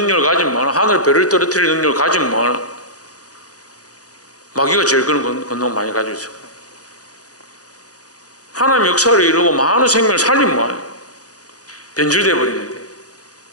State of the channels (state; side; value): late; right; 0.67 ms